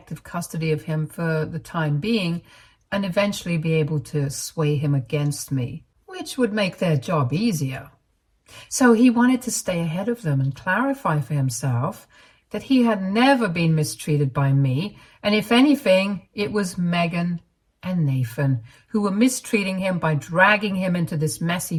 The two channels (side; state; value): both; identical; correlation 1.00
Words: custody of him for the time being and eventually be able to sway him against me, which would make their job easier. So he wanted to stay ahead of them and clarify for himself that he had never been mistreated by me, and if anything, it was Megan and Nathan, who were mistreating him by dragging him into this messy